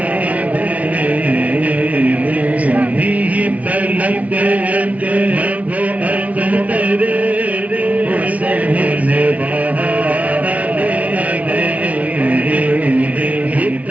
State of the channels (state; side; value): late; left; 0.068 ms